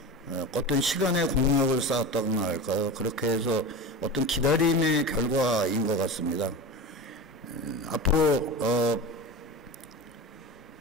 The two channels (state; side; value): normal; both; correlation 0.28